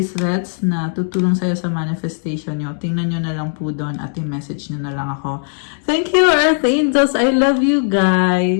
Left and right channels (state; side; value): silent; right; digital silence